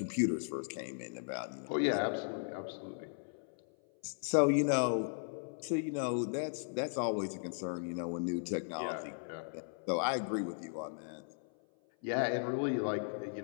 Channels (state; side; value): silent; right; 53 dB below the other